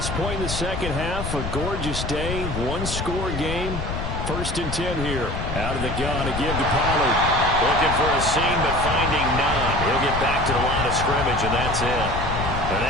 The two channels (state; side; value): noise; left; rumble, 4 dB below the sound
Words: point in the second half. A gorgeous day, 1-score game. 1st and 10 here. Out of the gun, a give to Pollard. Looking for a seam, but finding none. He'll get back to the line of scrimmage, and that's it. And